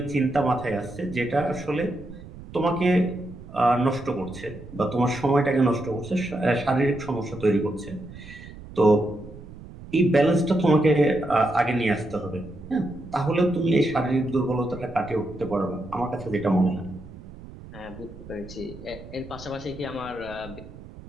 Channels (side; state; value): right; noise; rumble, 16 dB below the sound